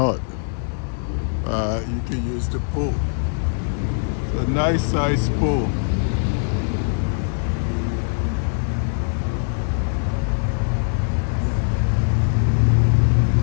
you can use the pool. It's a nice size pool.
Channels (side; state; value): right; silent; digital silence